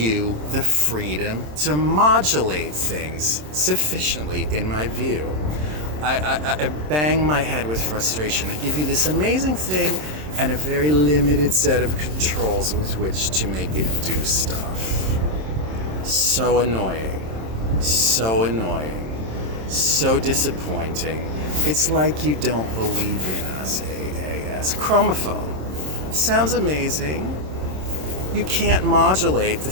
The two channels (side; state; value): left; late; 27 ms